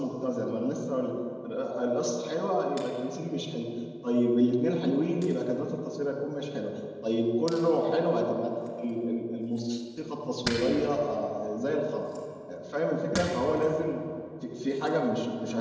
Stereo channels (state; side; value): identical; both; correlation 1.00